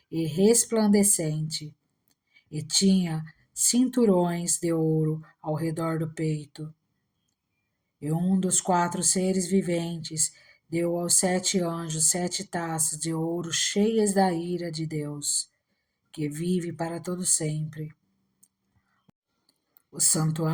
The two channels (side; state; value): both; identical; correlation 1.00